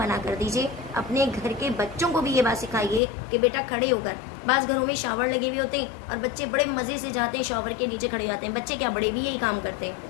کر دیجئے. اپنے گھر کے بچوں کو بھی یہ بات سکھائیے کہ بیٹا کھڑے ہو کر. بعض گھروں میں شاور لگے ہوئے ہوتے ہیں اور بچے بڑے مزے سے جاتے ہیں شاور کے نیچے کھڑے جاتے ہیں. بچے کیا، بڑے بھی یہی کام کرتے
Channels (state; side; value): drops out; right; at 3.0 s